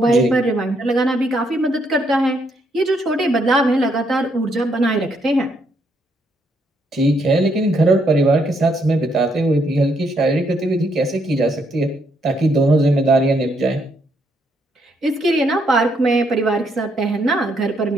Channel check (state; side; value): normal; both; correlation 0.74